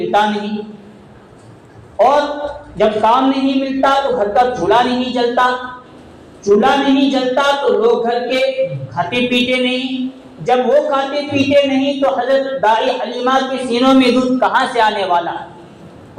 نہیں، اور جب کام نہیں ملتا تو گھر کا چولہا نہیں جلتا، چولہا نہیں جلتا تو لوگ گھر کے کھاتے پیتے نہیں، جب وہ کھاتے پیتے نہیں تو حضرت دائی حلیمہ کے سینوں میں دودھ کہاں سے آنے والا،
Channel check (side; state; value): both; identical; correlation 1.00